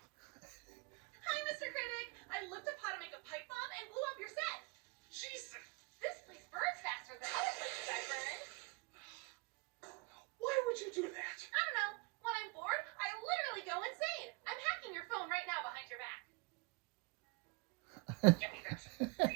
Mr. Critic. I looked up how to make a pipe bomb and blew up your set. Jesus! This place burns faster than other places I burned. Why would you do that? I don't know. When I'm bored, I literally go insane. I'm hacking your phone right now behind your back. Give me that.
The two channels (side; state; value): left; quieter; 26.9 dB